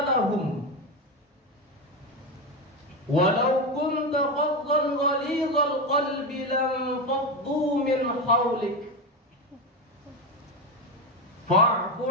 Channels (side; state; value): both; normal; correlation 0.15